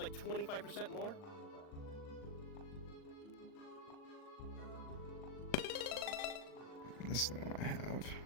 25% more. This is the one I have.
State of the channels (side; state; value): right; late; 39 ms